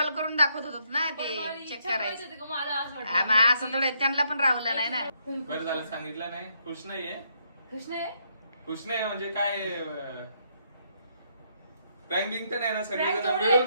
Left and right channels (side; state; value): both; inverted; correlation -0.74